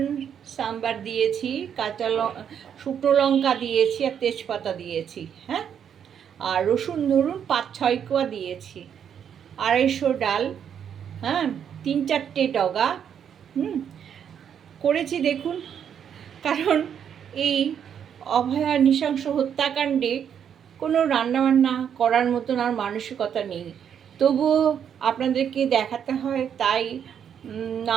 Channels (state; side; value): quieter; left; 8.4 dB